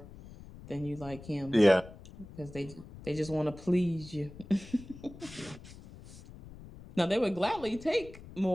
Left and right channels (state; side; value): noise; left; rumble, 17 dB below the sound